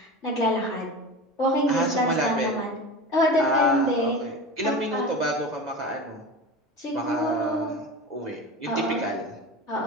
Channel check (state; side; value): normal; both; correlation 0.30